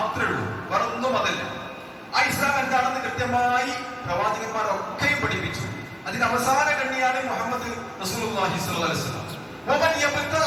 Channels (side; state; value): both; identical; correlation 1.00